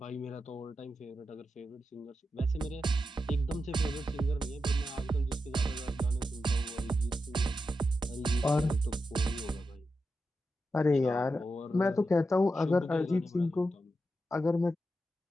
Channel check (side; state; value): both; normal; correlation 0.88